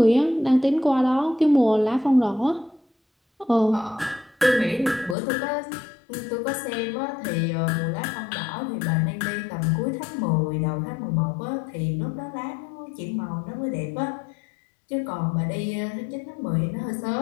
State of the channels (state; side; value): drops out; right; at 5.2 s